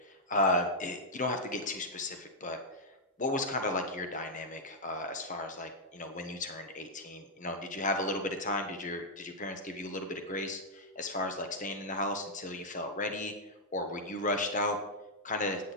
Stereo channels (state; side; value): normal; both; correlation -0.05